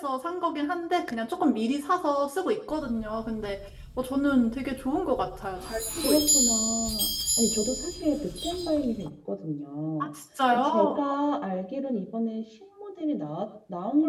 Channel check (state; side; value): identical; both; correlation 1.00